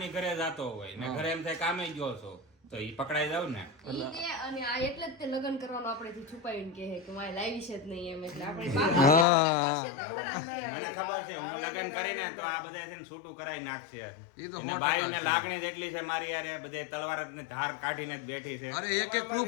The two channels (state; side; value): drops out; right; at 9.2 s